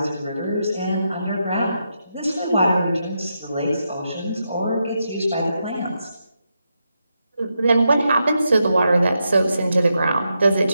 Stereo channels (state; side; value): inverted; both; correlation -0.84